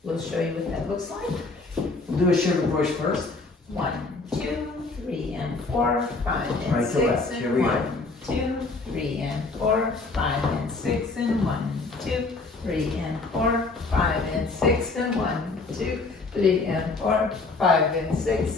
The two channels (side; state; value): right; quieter; 3.7 dB